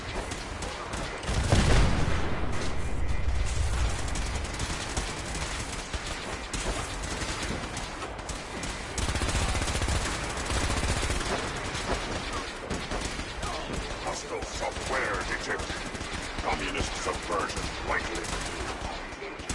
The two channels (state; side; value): identical; both; correlation 1.00